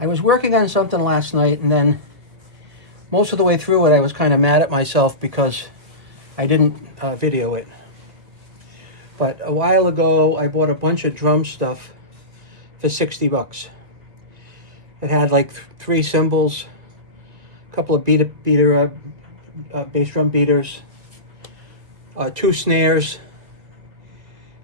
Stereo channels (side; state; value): left; late; 1.9 ms